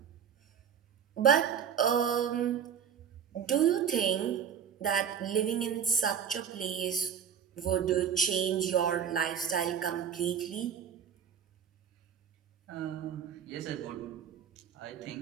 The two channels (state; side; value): quieter; left; 8.0 dB